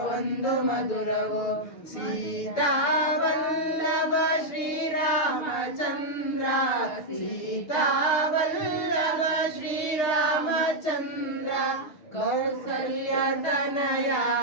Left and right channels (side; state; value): right; late; 6.6 ms